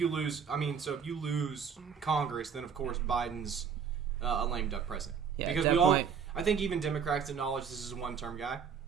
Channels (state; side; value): quieter; left; 6.9 dB